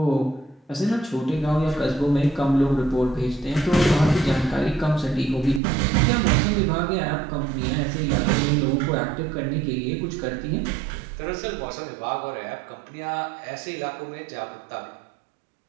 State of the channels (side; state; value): left; drops out; at 5.6 s